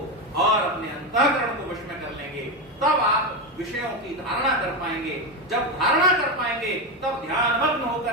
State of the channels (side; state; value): both; normal; correlation 0.12